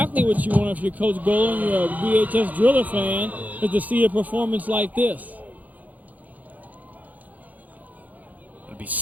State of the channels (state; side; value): late; left; 0.079 ms